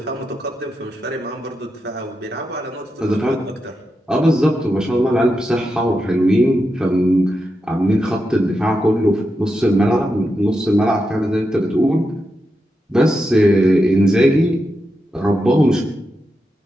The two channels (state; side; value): normal; both; correlation 0.87